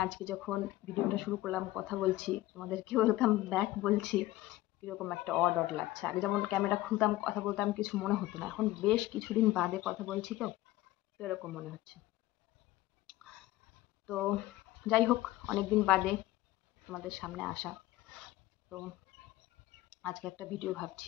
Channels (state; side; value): quieter; right; 17.0 dB